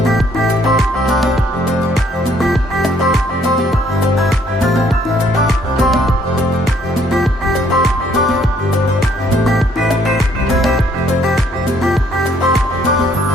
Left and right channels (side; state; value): both; normal; correlation 0.65